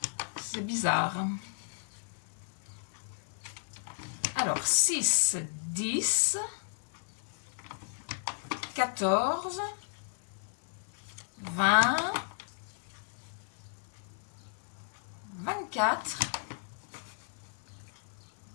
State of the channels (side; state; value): right; silent; 55 dB below the other